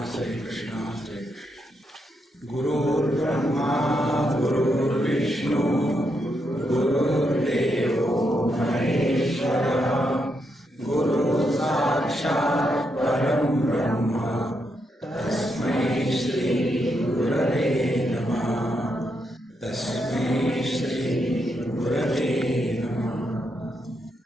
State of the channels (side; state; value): both; normal; correlation 0.81